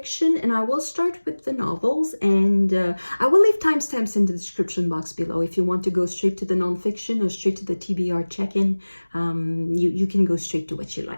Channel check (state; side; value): inverted; both; correlation -1.00